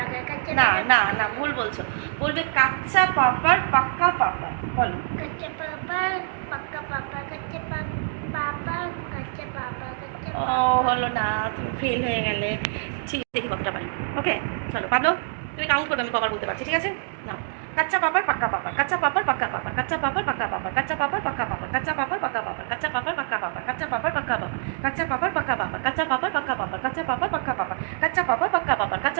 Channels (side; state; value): left; silent; digital silence